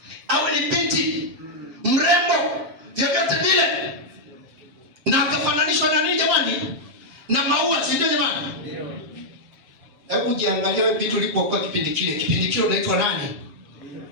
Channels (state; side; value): late; left; 7.6 ms